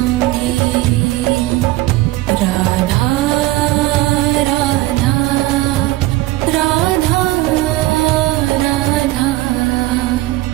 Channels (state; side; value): quieter; left; 18.1 dB